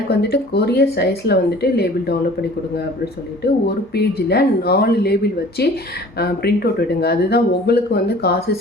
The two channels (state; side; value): normal; both; correlation 0.47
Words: வந்துட்டு கொரியர் சைஸில் வந்துட்டு லேபிள் டவுன்லோட் பண்ணி கொடுங்க அப்படின்னு சொல்லிட்டு ஒரு பேஜில் 4 லேபிள் வச்சு பிரிண்ட் அவுட் விடுங்க. அதுதான் உங்களுக்கு வந்து காசு